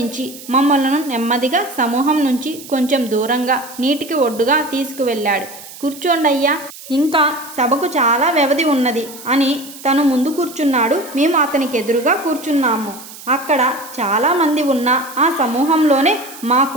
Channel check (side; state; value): right; noise; hiss, 16 dB below the sound